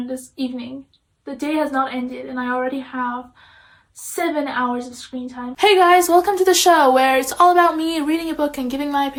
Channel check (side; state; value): both; identical; correlation 1.00